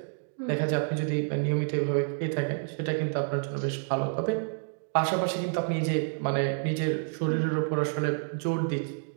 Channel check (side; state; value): left; silent; digital silence